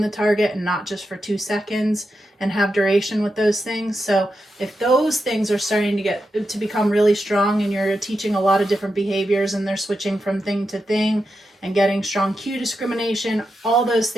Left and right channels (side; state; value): both; normal; correlation 0.87